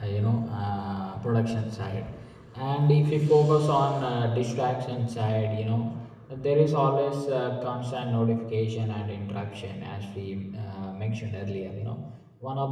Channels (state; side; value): identical; both; correlation 1.00